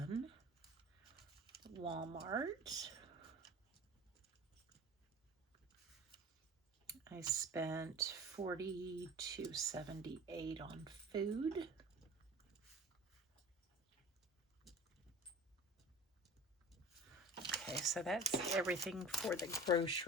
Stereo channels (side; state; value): both; normal; correlation 0.39